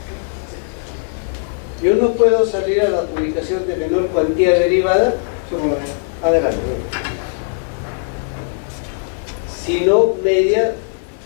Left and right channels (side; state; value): right; silent; digital silence